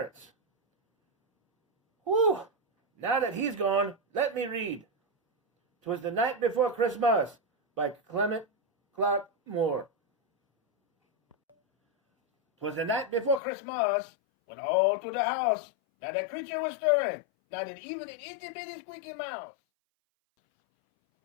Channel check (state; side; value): drops out; right; at 13.4 s